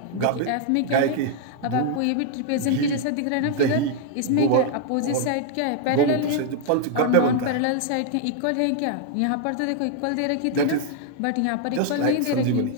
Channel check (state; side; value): different; both; correlation 0.00